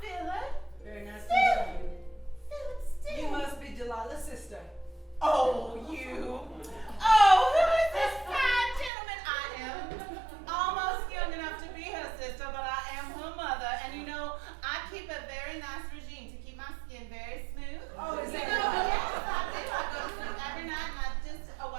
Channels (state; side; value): drops out; left; at 8.9 s